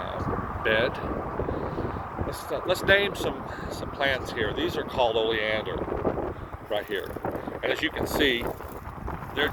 bed. Let's name some plants here. These are called oleander right here. And as you can see, they're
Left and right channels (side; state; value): both; identical; correlation 1.00